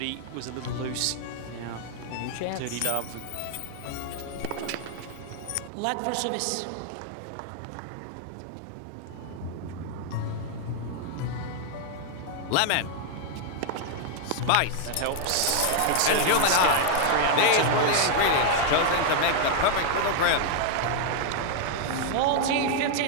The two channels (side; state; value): both; different; correlation 0.00